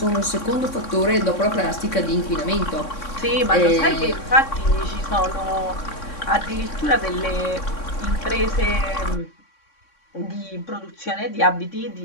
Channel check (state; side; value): late; right; 3.6 ms